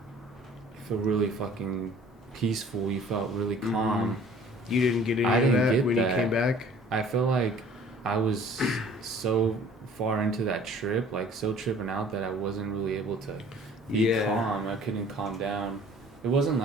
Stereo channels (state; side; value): normal; both; correlation 0.51